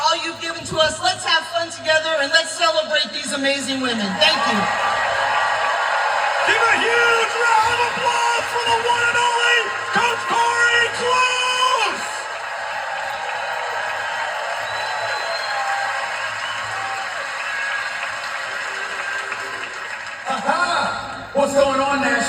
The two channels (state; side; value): identical; both; correlation 1.00